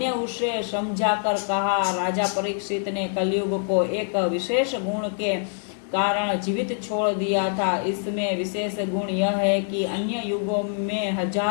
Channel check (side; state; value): right; silent; digital silence